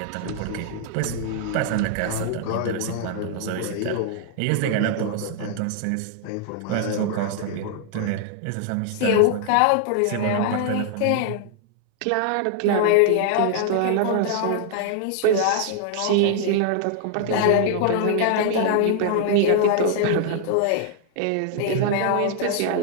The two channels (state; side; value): different; both; correlation -0.01